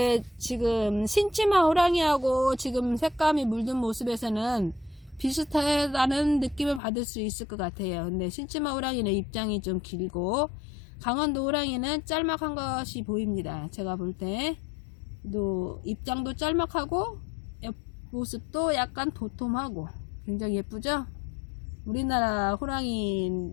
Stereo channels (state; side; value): drops out; right; at 6.8 s